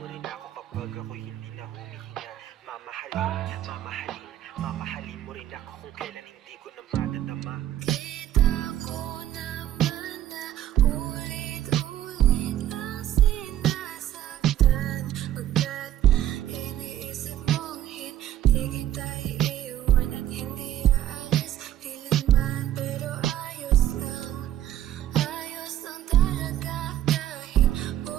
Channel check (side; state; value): left; quieter; 12.0 dB